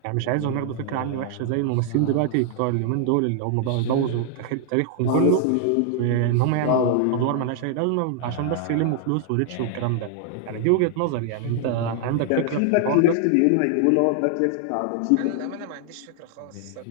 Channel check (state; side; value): different; both; correlation 0.00